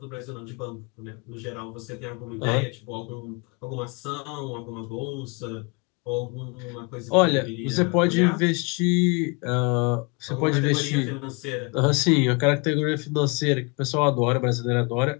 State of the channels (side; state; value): right; quieter; 30.9 dB